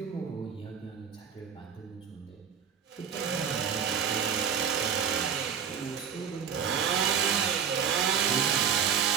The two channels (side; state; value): left; quieter; 7.4 dB